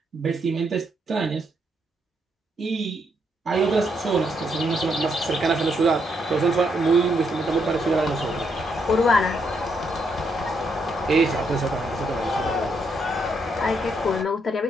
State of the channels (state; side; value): normal; both; correlation 0.76